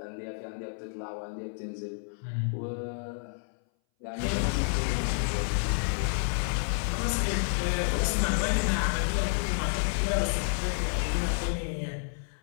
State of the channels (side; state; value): right; silent; 58 dB below the other